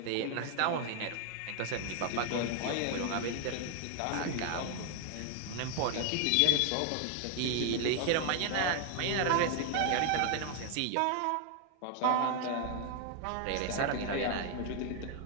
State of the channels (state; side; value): different; both; correlation 0.00